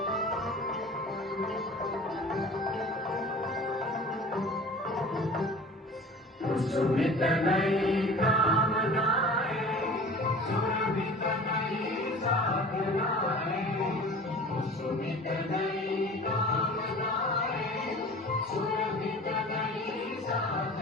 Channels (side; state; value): both; normal; correlation 0.41